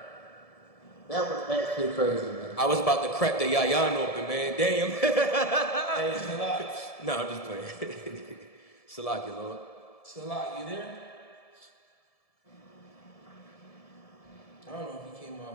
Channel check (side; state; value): right; late; 1.7 ms